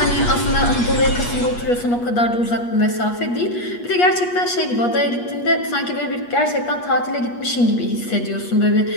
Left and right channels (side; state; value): right; late; 8.3 ms